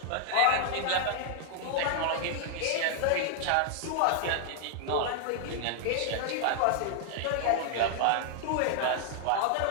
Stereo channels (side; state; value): both; different; correlation 0.00